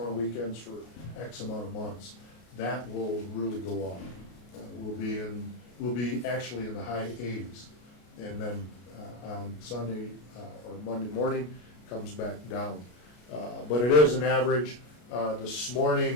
of weekends for X amount of months. That will really go up. We'll be actually in the high 80s. And then on Sunday or Monday morning, comes back down. But it is an average. This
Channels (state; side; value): late; right; 33 ms